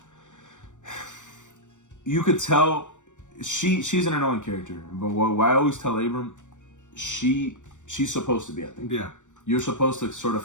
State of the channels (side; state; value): right; late; 0.85 ms